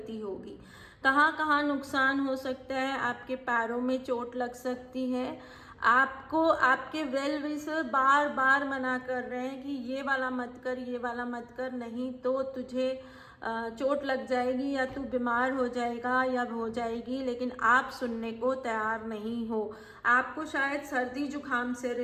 होगी। कहाँ कहाँ नुकसान हो सकता है, आपके पैरों में चोट लग सकती है। आपको आपके वेल विशर बार बार मना कर रहे हैं कि ये वाला मत कर, ये वाला मत कर, नहीं तो तुझे चोट लग जाएगी या तू बीमार हो जाएगा या हो जाएगी, लेकिन आप सुनने को तैयार नहीं हो। आपको शायद सर्दी जुकाम से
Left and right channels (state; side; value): identical; both; correlation 1.00